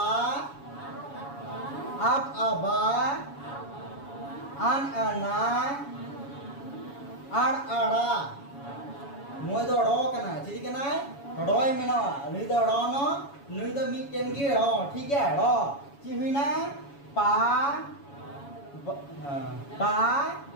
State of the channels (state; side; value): late; right; 7.1 ms